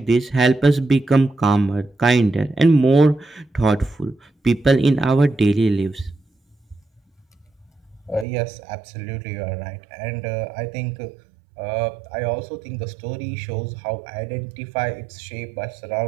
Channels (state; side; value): drops out; left; at 8.2 s